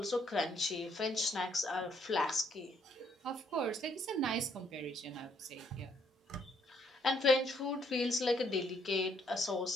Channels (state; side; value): normal; both; correlation 0.69